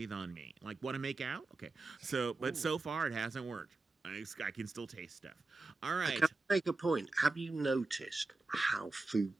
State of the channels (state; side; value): quieter; left; 3.4 dB